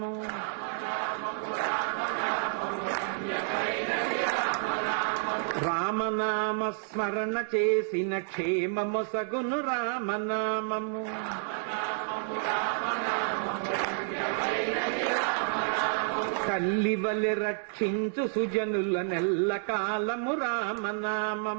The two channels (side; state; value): left; silent; digital silence